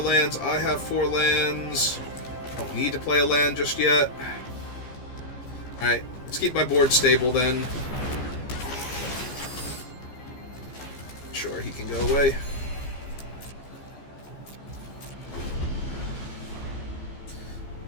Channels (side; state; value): right; late; 15 ms